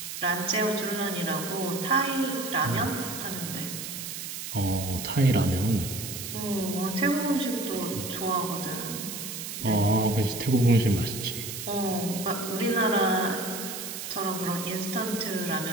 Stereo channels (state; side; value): noise; right; hiss, 7 dB below the sound